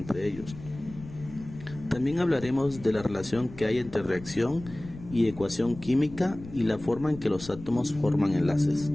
ellos. También hablaremos de la relación que hay entre reacción y ecuación química y la forma en que los átomos forman enlaces.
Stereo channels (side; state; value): left; noise; rumble, 16 dB below the sound